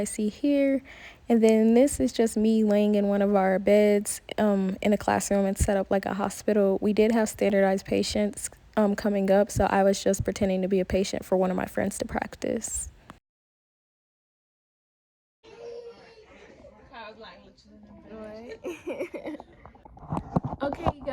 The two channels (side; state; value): both; identical; correlation 1.00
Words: see here. And then this is just me laying in one of our beds in a classroom. It's set up like a hospital. We did have standardized patients coming up, so I was just pretending to be a patient for one of my friends to practice. Okay